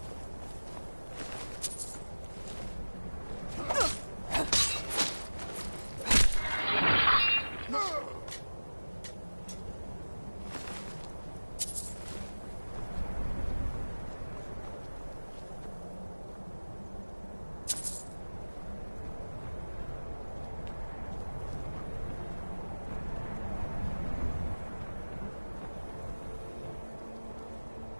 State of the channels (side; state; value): both; inverted; correlation -1.00